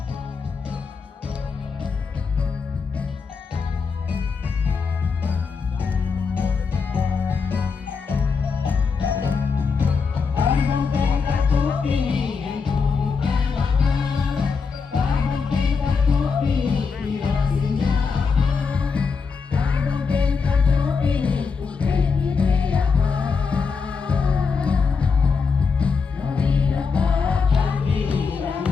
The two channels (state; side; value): quieter; right; 5.2 dB